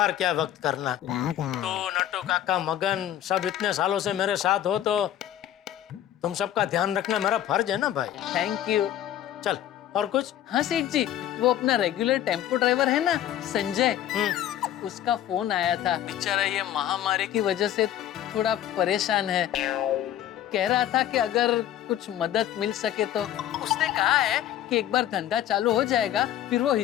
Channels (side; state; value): right; quieter; 11.7 dB